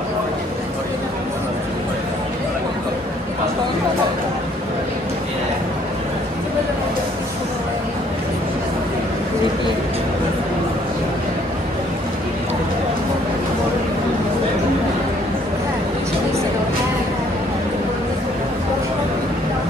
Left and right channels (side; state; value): both; normal; correlation 0.63